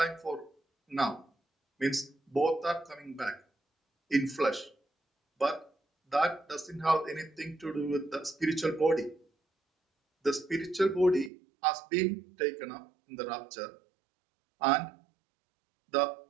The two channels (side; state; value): left; drops out; at 11.3 s